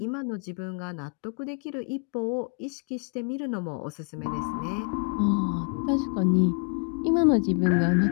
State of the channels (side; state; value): right; quieter; 38.5 dB